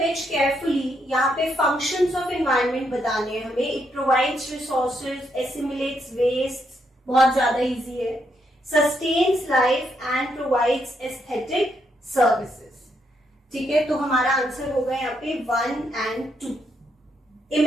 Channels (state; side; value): normal; both; correlation 0.77